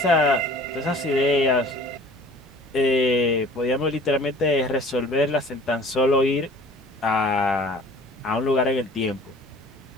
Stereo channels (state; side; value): normal; both; correlation 0.48